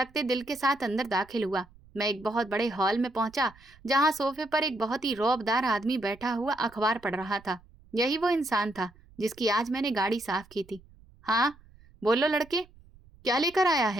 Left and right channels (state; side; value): noise; right; rumble, 26 dB below the sound